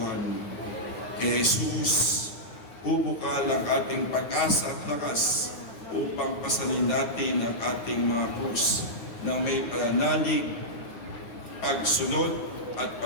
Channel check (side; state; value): right; late; 9.1 ms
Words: Kay Jesus, bubukal ang ating pag-asa at lakas upang pasanin natin ang ating mga krus na may pananalig, pagsunod at